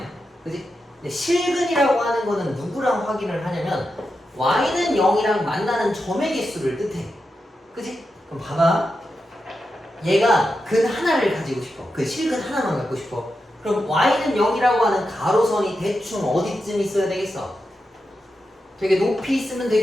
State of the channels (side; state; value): both; normal; correlation 0.88